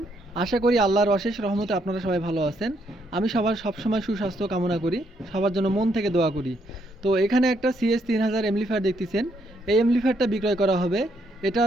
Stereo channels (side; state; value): both; normal; correlation 0.74